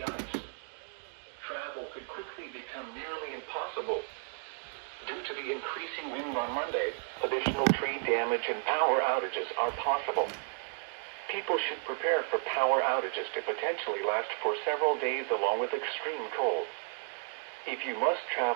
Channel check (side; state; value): left; silent; 56 dB below the other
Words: ice. Travel could quickly become nearly impossible. Due to the increasing wind on Monday, additional tree damage and power outages are possible. People should prepare for power outages to potentially last for several days along with extreme cold. If you must